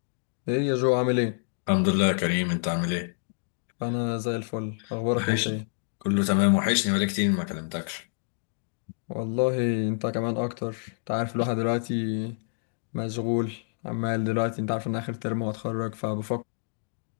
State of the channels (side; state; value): right; silent; digital silence